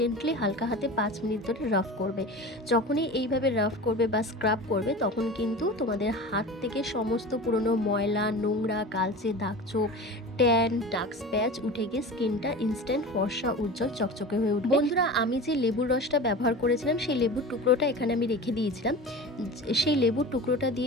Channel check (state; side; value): normal; both; correlation 0.33